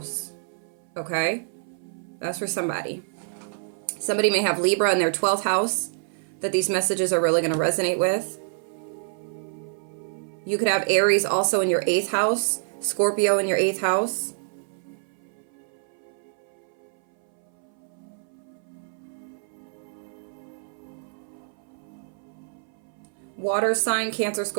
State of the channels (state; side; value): silent; left; 60 dB below the other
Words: okay? That's for somebody. Somebody may have Libra in their 12th house that these messages are really going to resonate with. You could have Aries also in your 8th house, Scorpio in your 8th house. Water sign, Cancer,